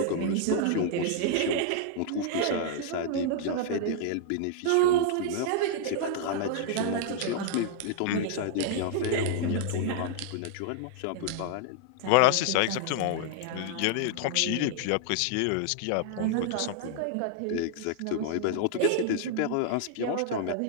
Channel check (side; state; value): both; different; correlation -0.01